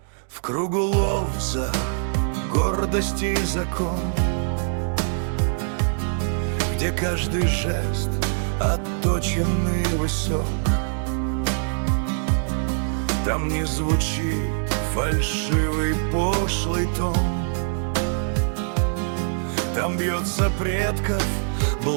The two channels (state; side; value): silent; left; digital silence